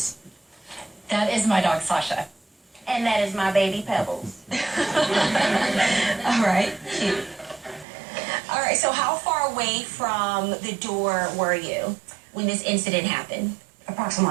That is my dog, Sasha. And that is my baby Pebbles. All right. Cute. All right, so how far away from the door were you when this incident happened?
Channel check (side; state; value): left; drops out; at 7.9 s